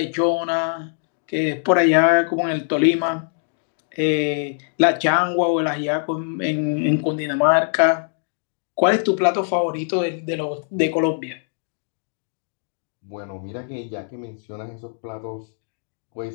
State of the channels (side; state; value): right; silent; digital silence